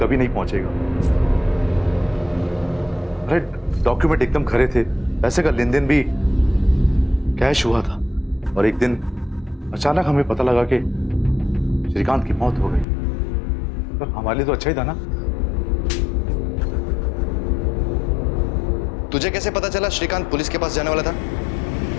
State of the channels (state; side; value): drops out; right; at 12.9 s